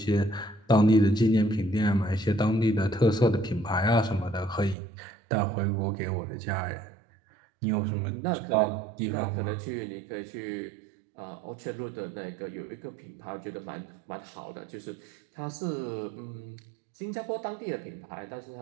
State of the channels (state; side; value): drops out; left; at 4.8 s